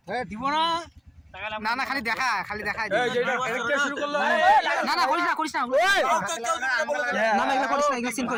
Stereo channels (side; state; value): both; identical; correlation 1.00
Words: দিব না না না খালি দেখা এই যে এটা কে শুরু করলো না না করিস না না না এগুলা করিস না এগুলা সিন